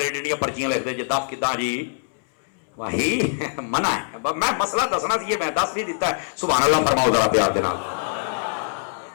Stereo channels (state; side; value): silent; right; 62 dB below the other